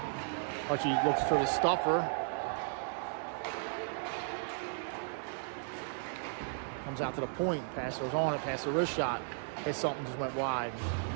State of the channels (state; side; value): silent; left; digital silence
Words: Hutchie looks for the stuffer. Comes out to the point. Passer's on it. Passer wrist shot. Hits something, just went wide.